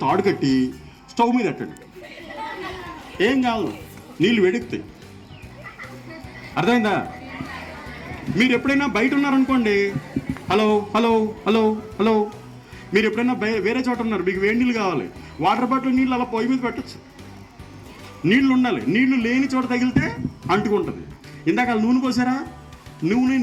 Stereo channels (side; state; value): both; identical; correlation 1.00